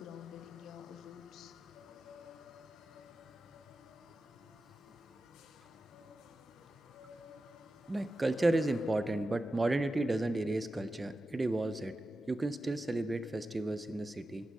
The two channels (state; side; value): normal; both; correlation 0.92